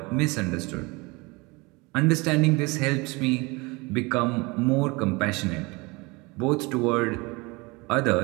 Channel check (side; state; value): left; quieter; 25.7 dB